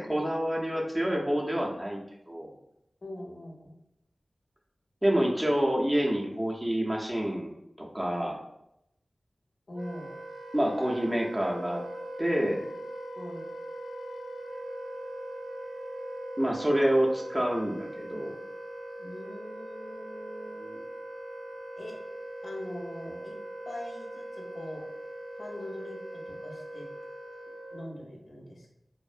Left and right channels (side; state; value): both; normal; correlation 0.98